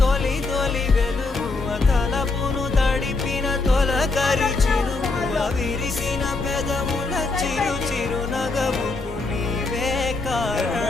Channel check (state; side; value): quieter; right; 3.7 dB